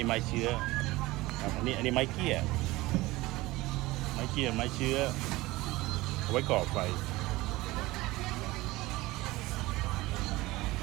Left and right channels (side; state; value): left; quieter; 19.8 dB